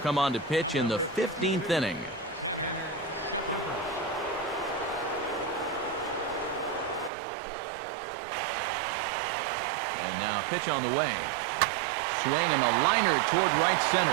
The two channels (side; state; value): left; drops out; at 7.1 s